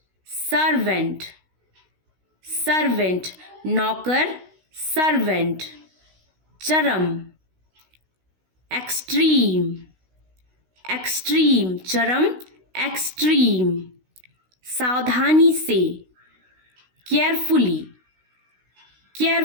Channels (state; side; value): late; left; 16 ms